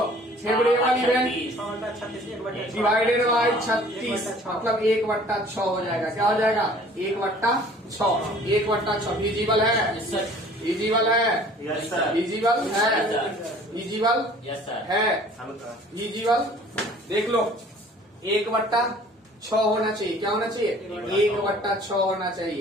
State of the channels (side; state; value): both; normal; correlation 0.51